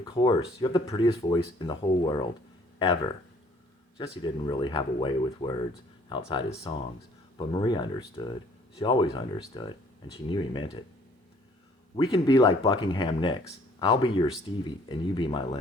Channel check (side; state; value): both; normal; correlation 0.59